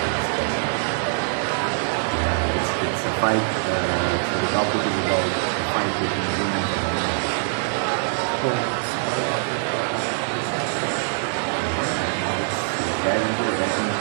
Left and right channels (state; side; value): silent; left; digital silence